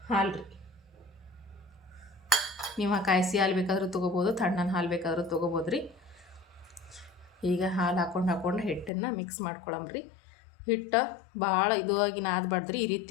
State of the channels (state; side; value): drops out; right; at 8.9 s